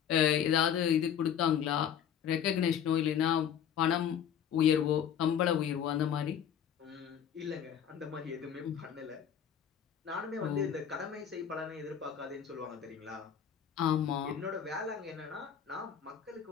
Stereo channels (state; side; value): quieter; right; 8.7 dB